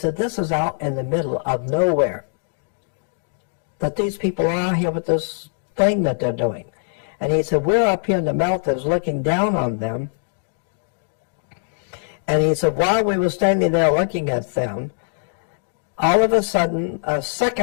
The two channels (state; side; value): silent; right; digital silence